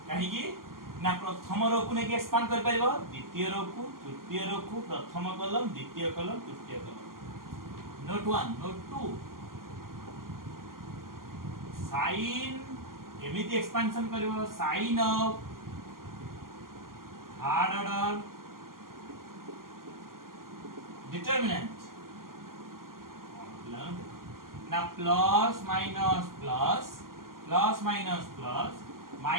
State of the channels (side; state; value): left; late; 0.92 ms